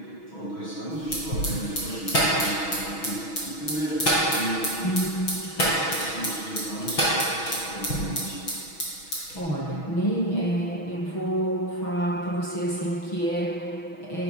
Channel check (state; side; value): late; right; 6.2 ms